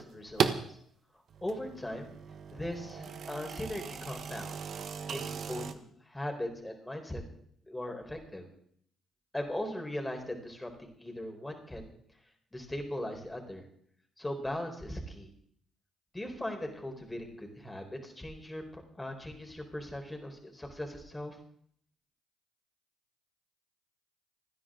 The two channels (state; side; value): normal; both; correlation 0.86